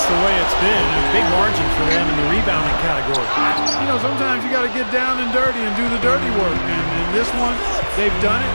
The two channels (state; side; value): inverted; both; correlation -1.00